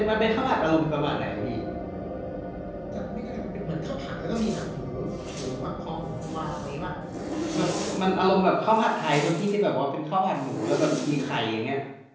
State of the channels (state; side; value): identical; both; correlation 1.00